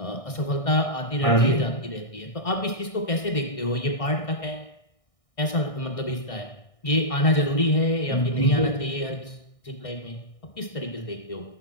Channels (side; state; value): right; late; 1.6 ms